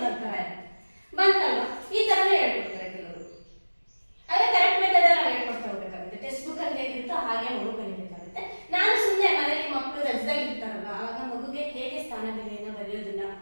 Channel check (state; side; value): inverted; both; correlation -1.00